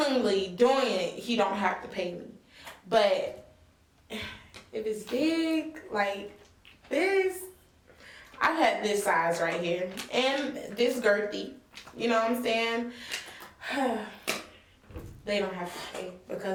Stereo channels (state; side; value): identical; both; correlation 1.00